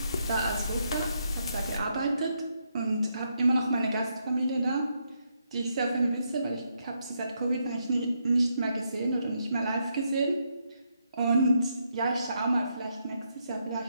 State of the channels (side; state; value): both; inverted; correlation -0.78